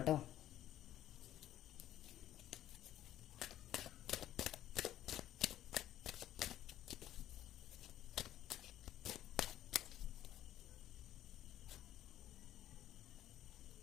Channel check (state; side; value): quieter; right; 12.6 dB